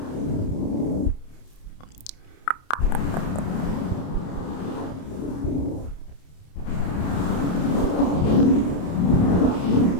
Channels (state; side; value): late; right; 28 ms